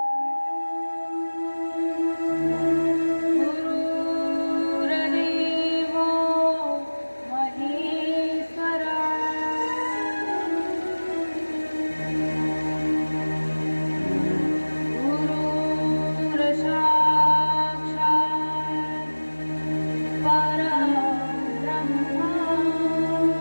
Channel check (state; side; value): inverted; both; correlation -1.00